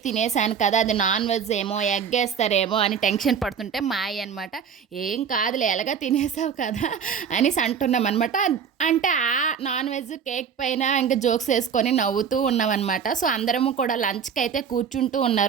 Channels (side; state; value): left; quieter; 7.1 dB